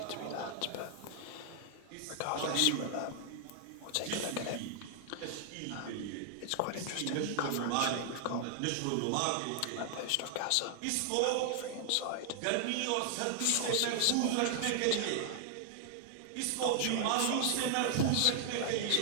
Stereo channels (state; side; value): different; both; correlation 0.00